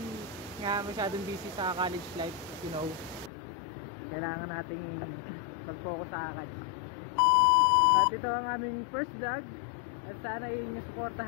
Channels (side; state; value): right; drops out; at 3.3 s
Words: nga masyadong busy sa college life, you know. Kailangan nating mag-focus sa akads. At ito ang aming first vlog at sana yung